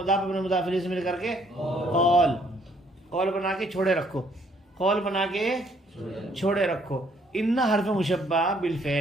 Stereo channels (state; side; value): normal; both; correlation 0.65